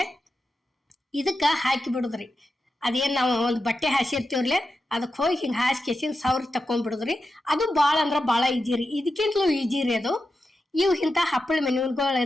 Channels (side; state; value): both; normal; correlation 0.90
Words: ಇದಕ್ಕೆ ಹಾಕಿ ಬಿಡೋದ್ರಿ. ಅದೇನು ನಾವು ಒಂದು ಬಟ್ಟೆ ಹಾಸಿರ್ತೀವ್ರಲ್ಲೇ ಅದಕ್ಕೆ ಹೋಗಿ ಹಿಂಗೆ ಹಾಸ್ಕೇಸಿನ ಸವ್ರಿ ತಕೊಂಡ್ಬಿಡುದ್ರಿ. ಅದು ಭಾಳ ಅಂದ್ರೆ ಭಾಳ ಈಜಿ ರೀ, ಇದಕ್ಕಿಂತಲೂ ಈಜಿ ರೀ ಅದು. ಇವು ಇಂಥ ಹಪ್ಪಳ